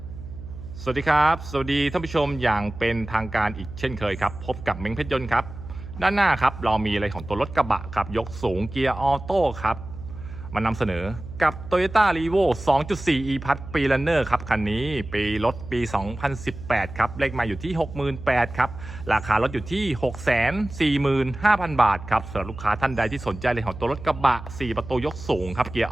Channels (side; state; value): right; noise; hum, 12 dB below the sound